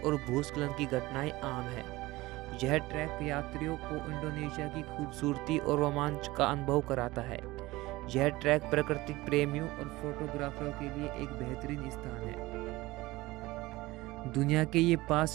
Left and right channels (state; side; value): quieter; left; 19.8 dB